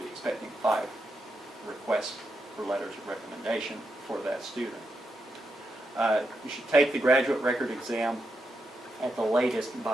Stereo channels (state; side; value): normal; both; correlation 0.84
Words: expecting 5 requests for letters of recommendation for that student. You should take the graduate record exam at the latest